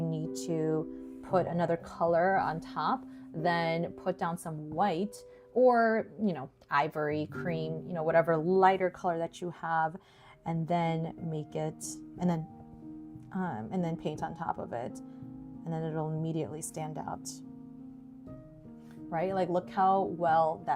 need to put another color on top, then put down some white, or, you know, ivory, cream, you know, whatever lighter color that you have, and then make it, and then paint on top of it, and then it'll immediately stand out, right? Like, look how well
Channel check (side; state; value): both; identical; correlation 1.00